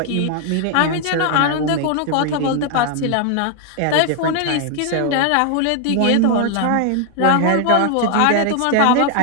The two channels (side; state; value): both; different; correlation 0.00